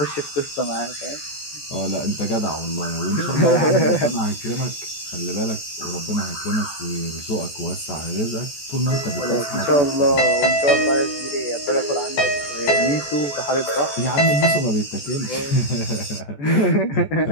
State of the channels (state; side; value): late; right; 14 ms